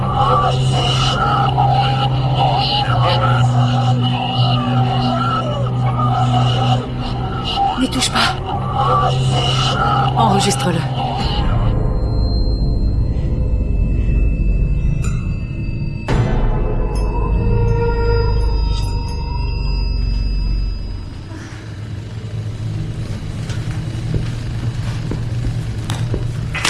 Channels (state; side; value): identical; both; correlation 1.00